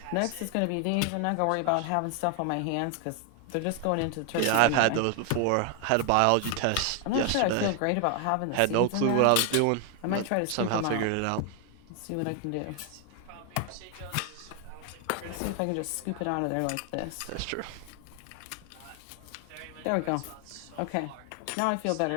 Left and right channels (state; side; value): different; both; correlation 0.01